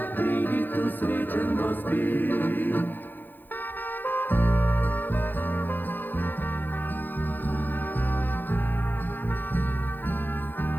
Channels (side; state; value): right; late; 0.089 ms